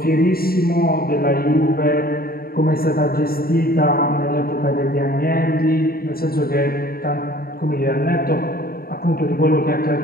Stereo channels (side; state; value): right; late; 0.43 ms